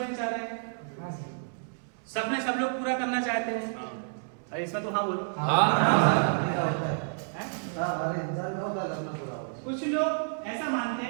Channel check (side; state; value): left; silent; digital silence